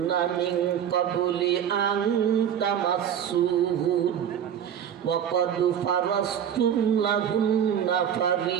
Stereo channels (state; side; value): quieter; left; 9.0 dB